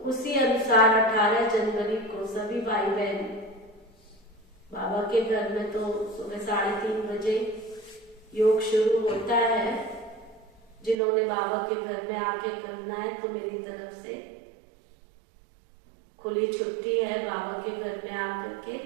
उसी अनुसार 18 जनवरी को सभी भाई बहन बाबा के घर में तो सुबह 3:30 बजे योग शुरू होता है। जिन्होंने बाबा के घर में आके करना है तो मेरी तरफ से खुली छुट्टी है, बाबा के घर में आकर के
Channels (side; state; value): left; drops out; at 11.0 s